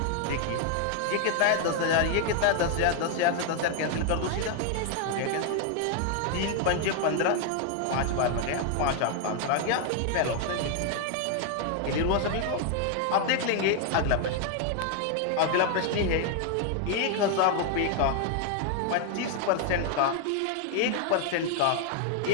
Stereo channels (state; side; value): different; both; correlation 0.00